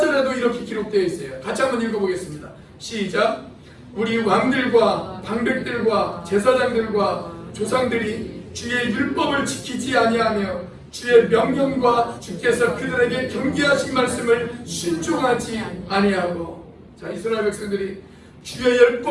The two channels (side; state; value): both; identical; correlation 1.00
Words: 이렇게 기록되어 있어요. 같이 한번 읽어보겠습니다. 시작. 우리 왕들과 방백들과 제사장들과 조상들이 주의 율법을 지키지 아니하며 주의 명령과 주께서 그들에게 경계하신 말씀을 순종하지 아니하고. 자, 이스라엘 백성들이 주의